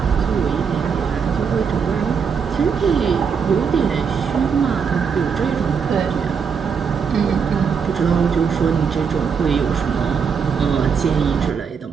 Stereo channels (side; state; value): left; quieter; 6.4 dB